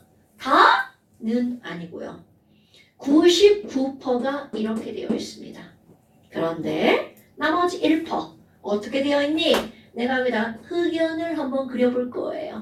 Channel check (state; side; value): identical; both; correlation 1.00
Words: 다는 아니고요. 99%가 이렇게 되어 있습니다. 그런데 나머지 1% 어떻게 되어 있니? 내가 여기다 흑연을 한번 그려볼